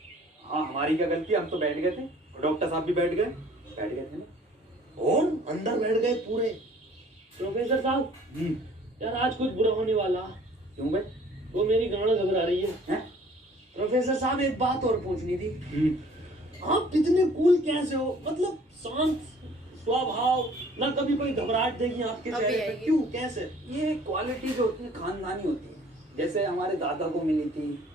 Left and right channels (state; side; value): normal; both; correlation 0.54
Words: हाँ हमारी क्या गलती, हम तो बैठ गए थे, डॉक्टर साहब भी बैठ गए थे ना। और अंदर बैठ गए पूरे। प्रोफेसर साहब यार आज कुछ बुरा होने वाला। क्यों भाई? वो मेरी गांड घबरा रही है। प्रोफेसर साहब एक बात और पूछनी थी। आप कितने कूल कैसे हो? मतलब शांत स्वभाव, ना कभी कोई घबराहट देगी आपके अभी चेहरे पे। आएगी। क्यों, कैसे? ये क्वालिटी जो होती है खानदानी होती है। जैसे हमारे दादा को मिली थी,